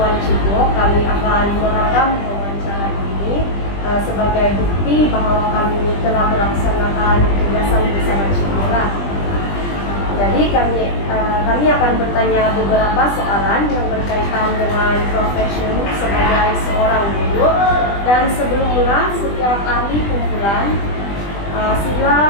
Cibu, kami akan merekam wawancara ini sebagai bukti bahwa kami telah melaksanakan tugasan bersama Cibu. Jadi kami akan bertanya beberapa soalan yang berkaitan dengan profesi sebagai seorang guru. Dan sebelum mulai setiap ahli kumpulan,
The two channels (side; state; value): right; late; 20 ms